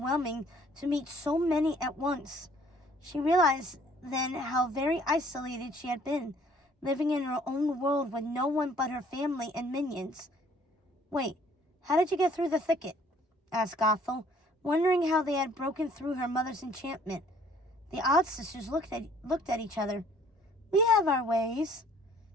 to meet so many at once. She realized then how very isolated she had been, living in her own world with no one but her family and minions. "Wait, how did you get through the thicket?" asked Gothel, wondering how they had broken through her mother's enchantment. The odd sisters looked at each other. "We have our ways."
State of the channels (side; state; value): both; normal; correlation 0.58